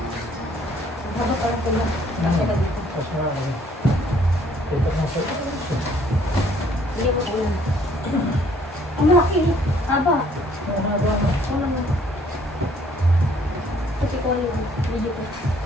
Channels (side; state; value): both; normal; correlation 0.62